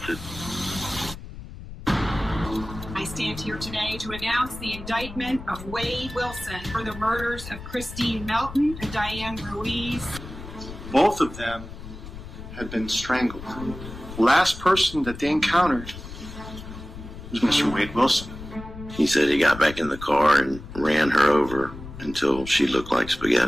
it. I stand here today to announce the indictment of Wade Wilson for the murders of Christine Melton and Diane Ruiz. Both of them had been strangled. The last person that they encountered was Mr. Wade Wilson. He said he got back in the car and ran her over until she looked like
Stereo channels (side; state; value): left; noise; rumble, 12 dB below the sound